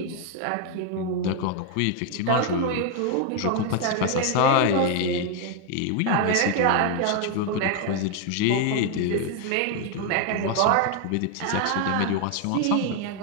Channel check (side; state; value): both; different; correlation 0.00